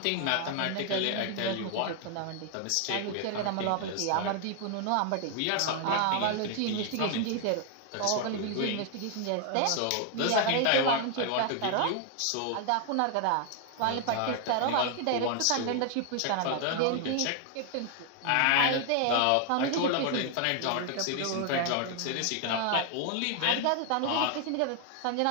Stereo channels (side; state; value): both; different; correlation 0.00